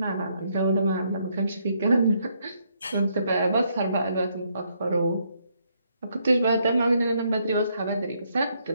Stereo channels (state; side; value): inverted; both; correlation -0.74